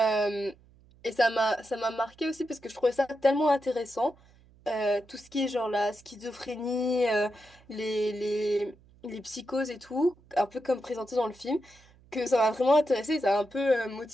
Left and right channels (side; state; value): right; noise; hum, 28 dB below the sound